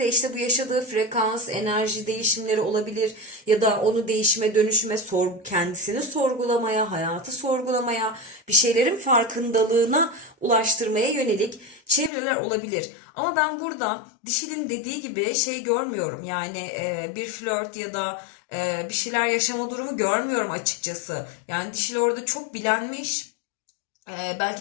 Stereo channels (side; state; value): right; drops out; at 12.1 s